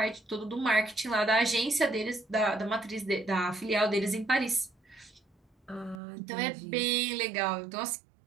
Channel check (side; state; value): left; drops out; at 6.0 s